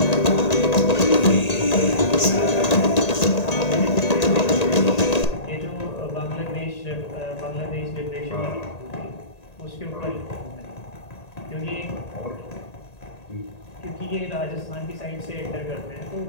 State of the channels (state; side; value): late; right; 1.8 ms